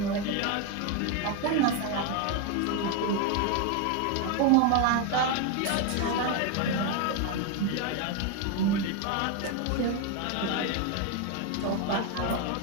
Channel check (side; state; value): both; different; correlation 0.02